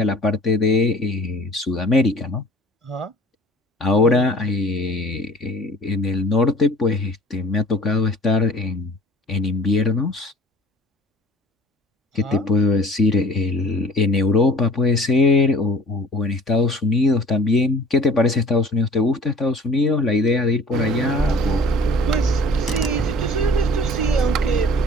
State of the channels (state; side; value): normal; both; correlation 0.48